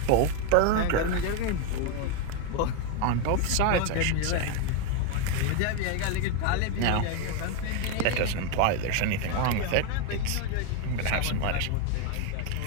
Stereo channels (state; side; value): different; both; correlation 0.01